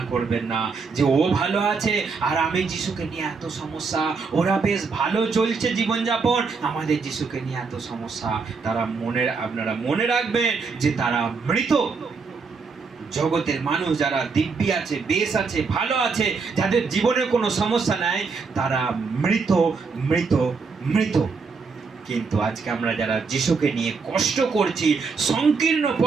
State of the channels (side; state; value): left; quieter; 4.8 dB